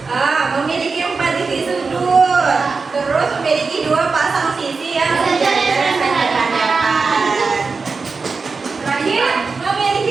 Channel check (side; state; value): left; quieter; 4.5 dB